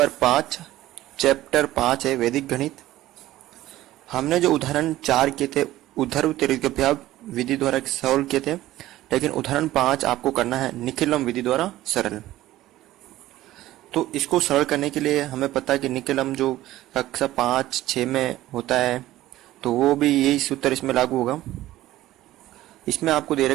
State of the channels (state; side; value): quieter; left; 15.3 dB